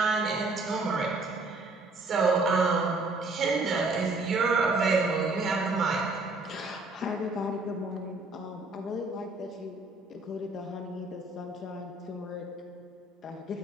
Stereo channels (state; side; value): quieter; left; 3.1 dB